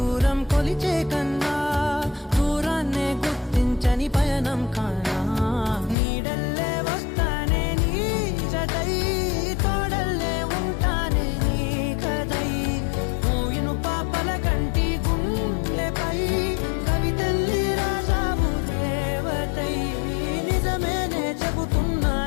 కొలిచే కన్నా దూరాన్నే గుర్తించని పయనం కానా నీడల్లే వస్తానే నీ జతై తోడల్లే ఉంటానే నీ కదై మోయిను పాపల కంటి గుండెపై కవితల్లి రాజావు దేవతై నిజమేనే చెబుతున్నా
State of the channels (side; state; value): right; drops out; at 6.0 s